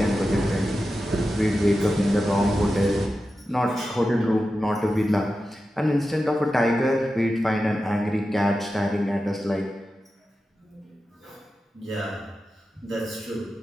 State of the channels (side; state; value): both; normal; correlation 0.92